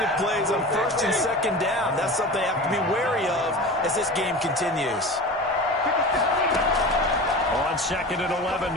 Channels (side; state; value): both; normal; correlation 0.32